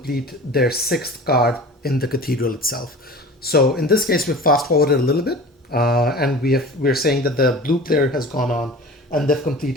their 6th card in the cathedral itself. So in this case, we've fast forwarded a little bit, and we're saying that the blue player has gone on and they've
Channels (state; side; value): normal; both; correlation 0.38